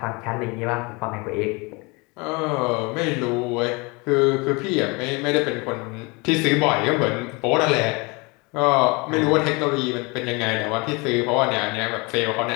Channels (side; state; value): right; quieter; 27.4 dB